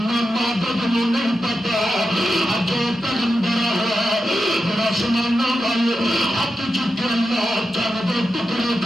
بد نہیں پتا اج پیغمبر ہے ذرا سمانا والے ہاتھ چکے اللہ چل دے ٹکڑے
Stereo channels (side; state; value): both; normal; correlation 0.89